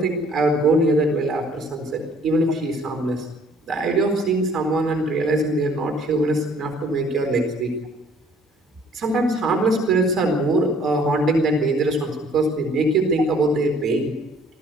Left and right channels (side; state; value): both; normal; correlation 0.58